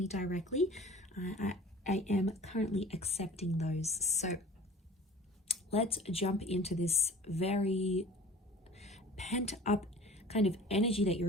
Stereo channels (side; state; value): both; normal; correlation 0.44